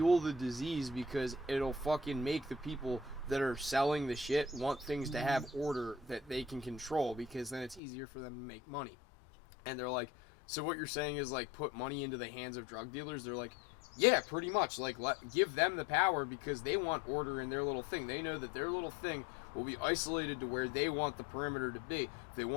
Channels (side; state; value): right; drops out; at 7.8 s